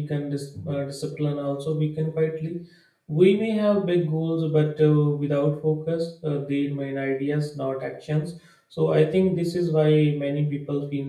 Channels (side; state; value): both; identical; correlation 1.00